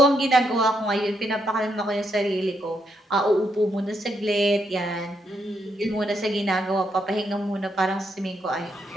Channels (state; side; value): normal; both; correlation 0.78